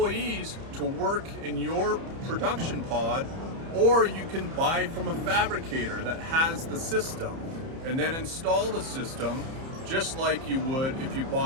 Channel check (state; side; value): late; left; 30 ms